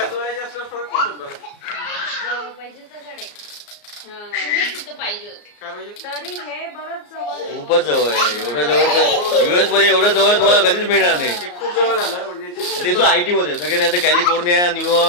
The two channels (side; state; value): right; late; 34 ms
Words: जवळ पाहिजे तर गाडी पाहिजे होते तरी हे बरंच जवळ खूपच जवळ आहे. एवढं जवळ युएस मध्ये एवढं जवळ तुम्हाला कधीच मिळणार नाही. ते तो IT मध्ये सगळे नाही तर कॅलिफोर्निया,